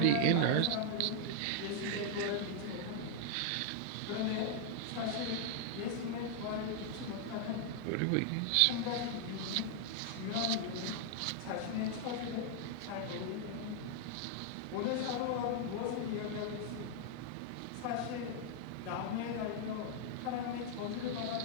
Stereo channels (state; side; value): different; both; correlation 0.00